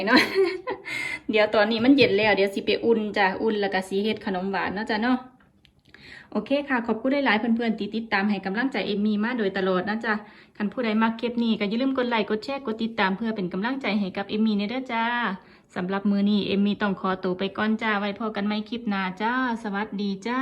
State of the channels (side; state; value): both; identical; correlation 1.00